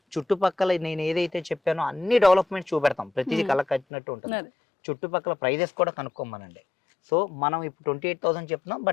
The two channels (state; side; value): drops out; right; at 3.9 s